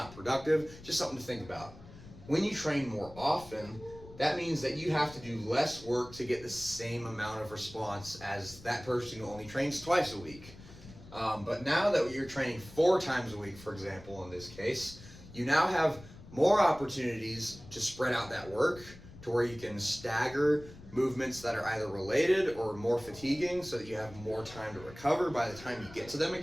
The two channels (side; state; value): left; noise; rumble, 18 dB below the sound